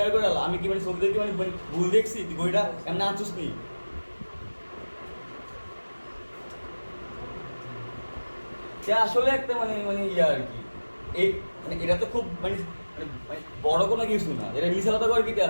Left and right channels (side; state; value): both; inverted; correlation -1.00